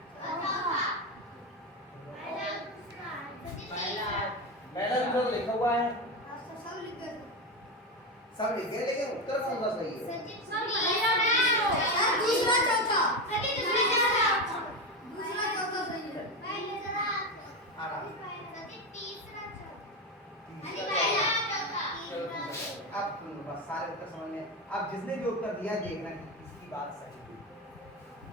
चौथा पहला दूसरा सजी तीसरा पहला दूसरा तो लिखा हुआ है, सब लिख दो सब लिख गए, लेकिन उत्तर कौन सा सही है? सजी सर दूसरा चौथा सजी दूसरा चौथा दूसरा चौथा सही है पहले जरा आराम। सजी तीसरा चौथा सजी तीसरा पहला चौथा। चौथा तीसरा अब बस सारे उत्तर समझ में। अब जिसने भी उत्तर दिया देखना कि इसकी बात सही है।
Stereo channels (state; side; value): normal; both; correlation 0.15